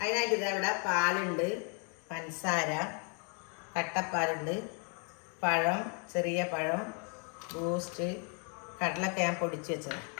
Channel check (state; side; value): quieter; right; 38.9 dB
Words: അതിനായിട്ട് ഇതവിടെ പാലുണ്ട്, പഞ്ചസാര, കട്ടപ്പാലുണ്ട്, പഴം, ചെറിയ പഴം, ബൂസ്റ്റ്, കടലൊക്കെ ഞാൻ പൊടിച്ച് വെച്ചത്.